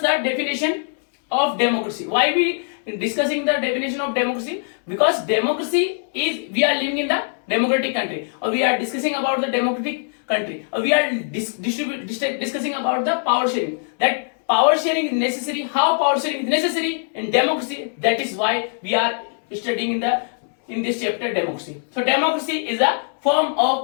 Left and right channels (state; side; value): silent; right; digital silence